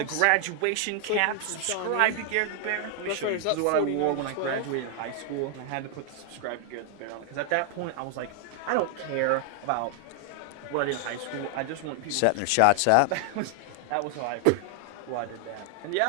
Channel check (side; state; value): both; different; correlation 0.00